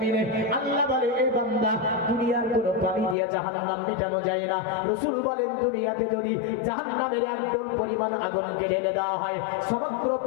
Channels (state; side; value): drops out; right; at 3.2 s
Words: আল্লাহ বলে এই বান্দা, দুনিয়ার কোনো পানি দিয়ে জাহান্নাম মেটানো যায় না। রাসূল বলেন দুনিয়াতে যদি জাহান্নামের 1 ডল পরিমাণ আগুনকে ঢেলে দেওয়া হয়, সমগ্র